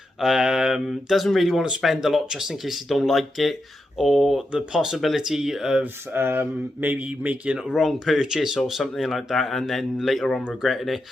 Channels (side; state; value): both; normal; correlation 0.86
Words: doesn't really want to spend a lot just in case you don't like it, or the possibility of maybe making a wrong purchase or something like that and then later on regretting it.